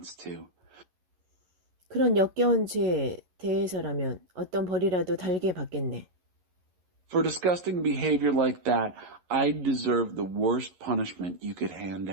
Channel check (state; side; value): late; left; 11 ms